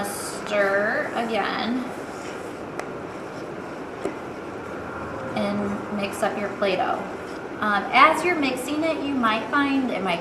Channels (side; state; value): both; identical; correlation 1.00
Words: stir again and mix up your Play-Doh. As you're mixing it, you might find it might